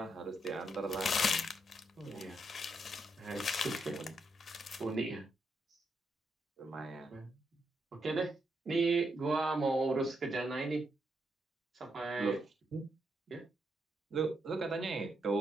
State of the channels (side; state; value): both; normal; correlation 0.80